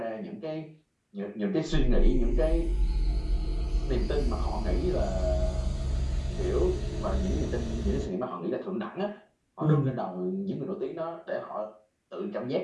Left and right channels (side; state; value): both; identical; correlation 1.00